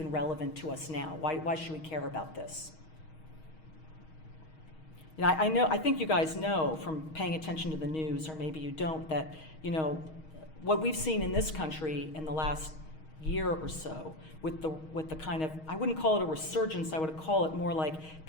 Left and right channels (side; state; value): right; late; 6.4 ms